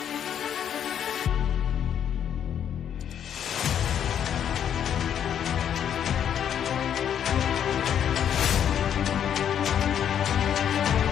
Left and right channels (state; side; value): quieter; right; 9.1 dB